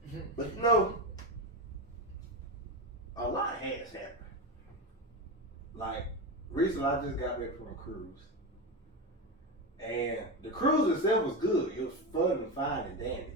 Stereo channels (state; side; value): normal; both; correlation 0.17